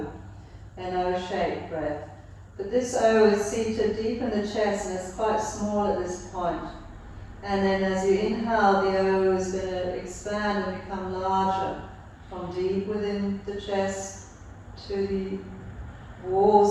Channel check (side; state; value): both; identical; correlation 1.00